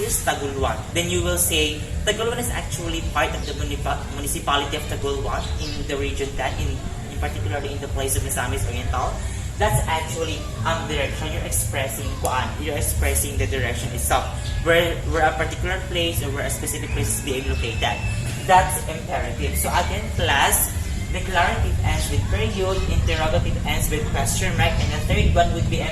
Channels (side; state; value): both; identical; correlation 1.00